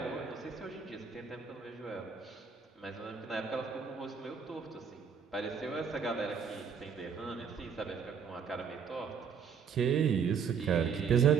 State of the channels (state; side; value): quieter; left; 6.5 dB